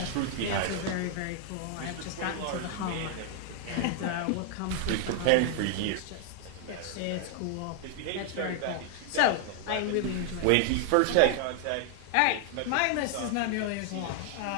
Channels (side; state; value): both; different; correlation 0.00